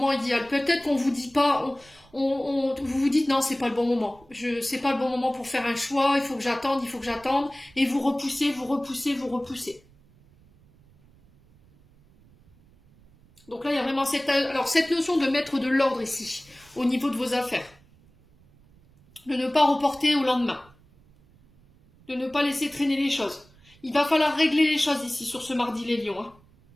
idéal. Peut-être qu'on vous dit pas, vous vous dites non, c'est pas le bon moment. C'est pas le bon moment pour faire un choix, il faut que j'attende, et vous repoussez. Donc là, il y a vraiment cette notion de mettre de l'ordre ici, au niveau de vos affaires. De ne pas reporter au lendemain. De ne pas laisser traîner les choses. Il va falloir régler les choses ici, sur ce mardi, les lions, hein.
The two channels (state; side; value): noise; right; rumble, 29 dB below the sound